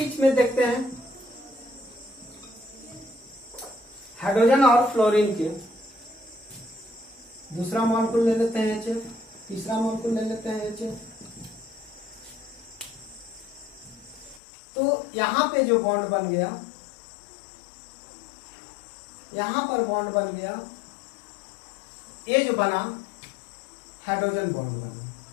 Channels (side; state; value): right; drops out; at 14.4 s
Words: में देखते हैं हाइड्रोजन और फ्लोरीन के, दूसरा मॉलिक्यूल ले लेते हैं HF, तीसरा मॉलिक्यूल ले लेते हैं HF। तो यहां पे जो बॉन्ड बन गया, यहां पर बॉन्ड बन गया, ये जो बना हाइड्रोजन बॉन्ड बना।